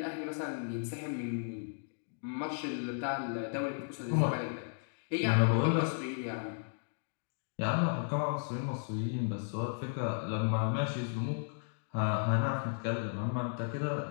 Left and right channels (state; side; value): silent; right; digital silence